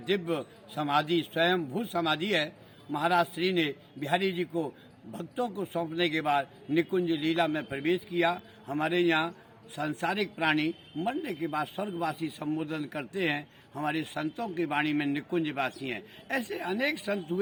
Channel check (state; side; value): identical; both; correlation 1.00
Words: दिव्य समाधि, स्वयं भू समाधि है। महाराज श्री ने बिहारी जी को भक्तों को सौंपने के बाद निकुंज लीला में प्रवेश किया। हमारे यहाँ सांसारिक प्राणी मरने के बाद स्वर्गवासी संबोधन करते हैं। हमारे संतों की वाणी में निकुंजवासी हैं। ऐसे अनेक संत